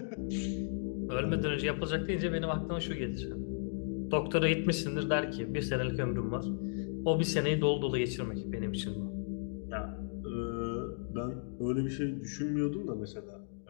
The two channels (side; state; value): right; silent; digital silence